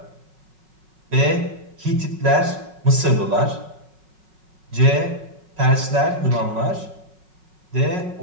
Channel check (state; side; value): late; left; 5.4 ms